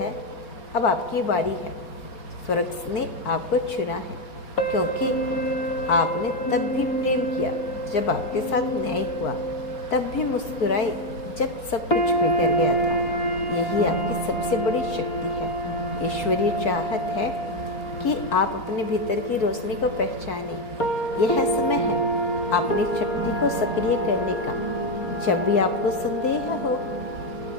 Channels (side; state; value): right; late; 4.2 ms